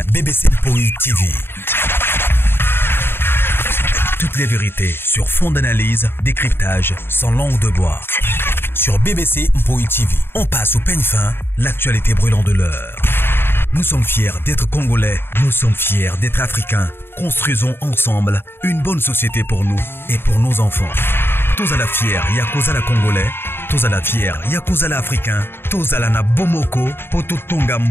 BBC Mpoi TV. Toutes les vérités sur fond d'analyse, décryptage, sans langue de bois. Sur BBC Mpoi TV, on passe au peigne fin, l'actualité brûlante de l'heure. Nous sommes fiers d'être Congolais, nous sommes fiers d'être Africains. Construisons ensemble une bonne société pour nous et pour nos enfants. Tous à la fière, Yakozala Congolais. Tous à la fière, Yakozala Africain. Tous à la na Bomoko, Poto Tonga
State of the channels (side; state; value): right; late; 0.11 ms